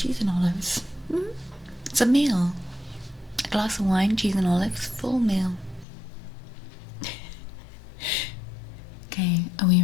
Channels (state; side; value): drops out; right; at 5.9 s